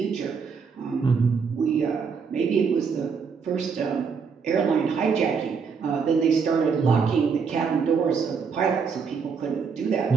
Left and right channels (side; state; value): left; quieter; 5.8 dB